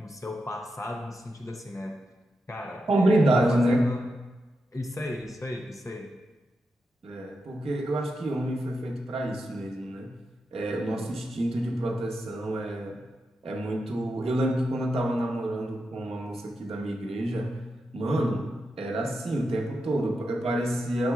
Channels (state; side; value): normal; both; correlation 0.87